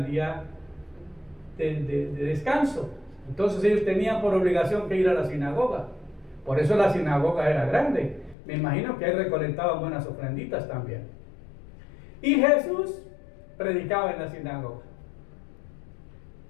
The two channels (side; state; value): right; drops out; at 8.3 s